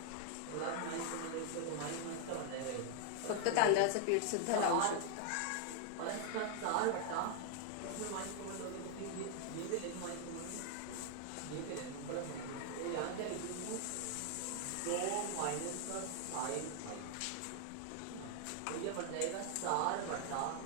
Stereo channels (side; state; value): both; different; correlation 0.00